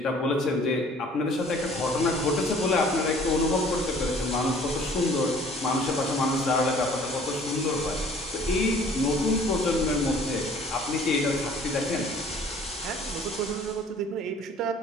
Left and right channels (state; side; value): normal; both; correlation 0.53